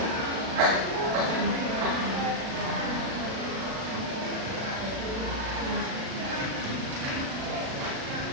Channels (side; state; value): left; late; 37 ms